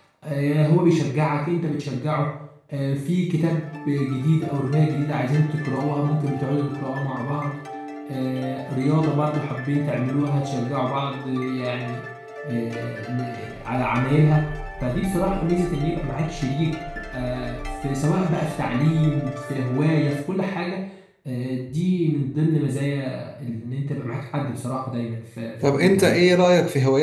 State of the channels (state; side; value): identical; both; correlation 1.00